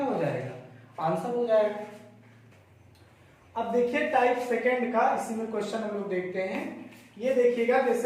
हो जाएगा? आंसर हो जाएगा। अब देखिए टाइप सेकंड का इसी में क्वेश्चन हम लोग देखते हैं। ये देखिएगा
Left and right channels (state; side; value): identical; both; correlation 1.00